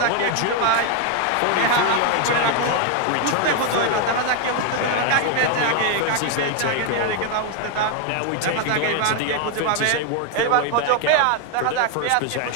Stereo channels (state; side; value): different; both; correlation 0.01